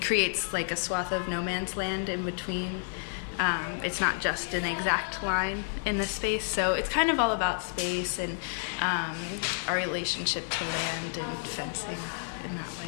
creates like a swath of no man's land in between. It's not just an exact line in the space. So it's kind of all about space and our relationship to land and fencing in that way.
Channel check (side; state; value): right; silent; digital silence